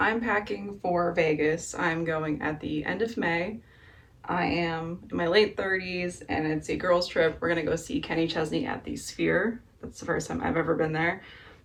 packing for Vegas. I'm going at the end of May. I am in my late 30s and it's a girls' trip. We're gonna go see Kenny Chesney at the Sphere. That's the first time I've ever been there.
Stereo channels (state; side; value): identical; both; correlation 1.00